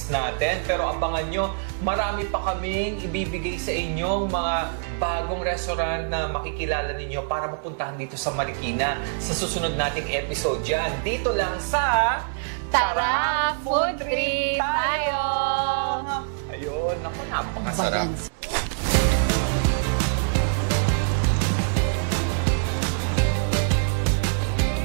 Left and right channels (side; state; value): left; silent; 62 dB below the other